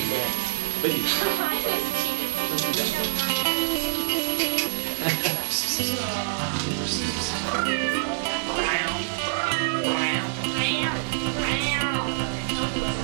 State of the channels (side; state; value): left; silent; digital silence